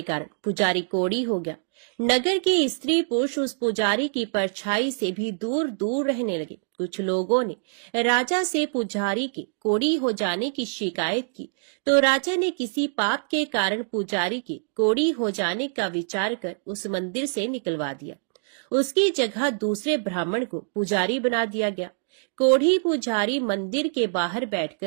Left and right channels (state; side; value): silent; left; digital silence